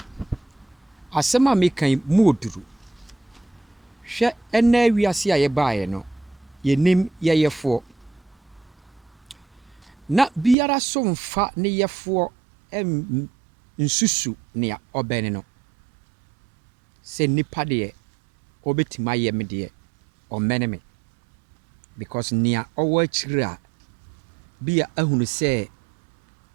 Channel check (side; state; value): left; drops out; at 10.6 s